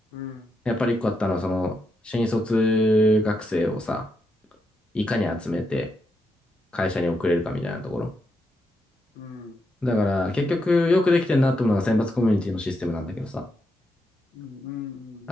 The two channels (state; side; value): normal; both; correlation 0.82